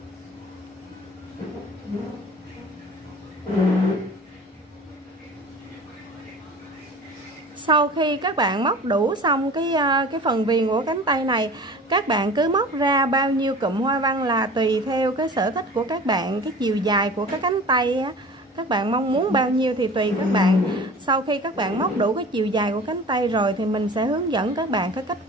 Sau khi các bạn móc đủ xong cái phần viền của cánh tay này, các bạn cứ móc ra bao nhiêu cụm hoa văn là tùy theo cái sở thích của các bạn, cái chiều dài của cái cánh tay á, các bạn mong muốn bao nhiêu thì tùy các bạn. Sau khi các bạn móc đủ cái chiều dài của cánh tay rồi thì mình sẽ hướng dẫn các bạn cái cách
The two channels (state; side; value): normal; both; correlation 0.40